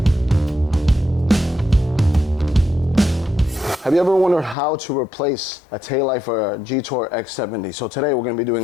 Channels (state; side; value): drops out; right; at 4.5 s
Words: Have you ever wondered how to replace a taillight for a Jetour X70? So today we're gonna be